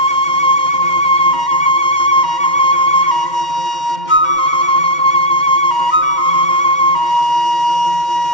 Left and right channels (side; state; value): right; late; 2.1 ms